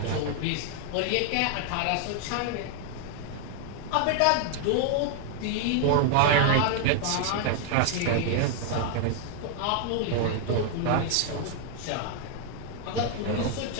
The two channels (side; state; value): both; different; correlation 0.00